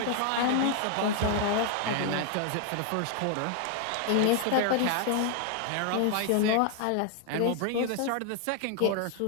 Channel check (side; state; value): both; different; correlation 0.00